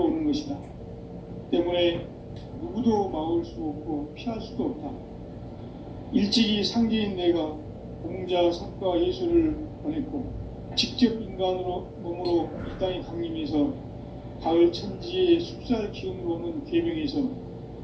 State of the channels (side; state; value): both; identical; correlation 1.00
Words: 오는 것이다. 때문에 누구도 막을 수 없고 피할 수도 없다. 일찍이 상제인 내가 공자, 석가, 예수를 보냈고 직접 인간으로 몸으로 이 땅에 강림해서 가을 천지의 숲살 기운으로 오는 계명에서